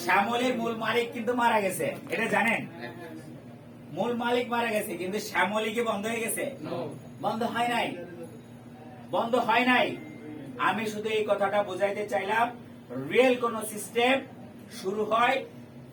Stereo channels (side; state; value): both; identical; correlation 1.00